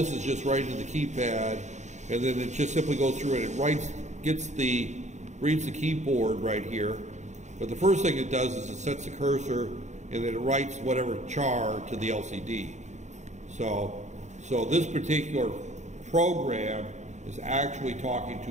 is just right into the keypad, and then it just simply goes through and it reads the keyboard right here. But the first thing it does is it sets the cursor, and then it writes whatever char to the LCD. So this particular program is actually talking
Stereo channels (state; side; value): late; left; 0.34 ms